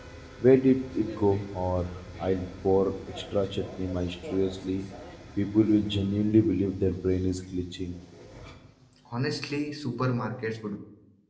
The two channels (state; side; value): identical; both; correlation 1.00